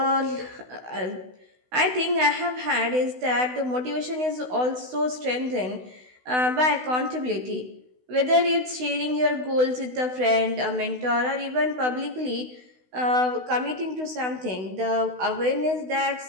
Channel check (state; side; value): late; left; 16 ms